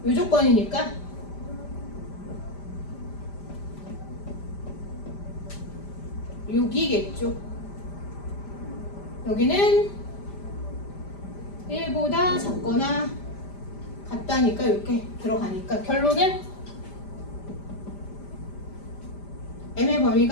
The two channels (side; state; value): right; late; 5.0 ms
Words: 이 조건이니까 여기겠죠. 여기는 1보다 작거나 같다니까 이렇게 들어가니까 결론은 m의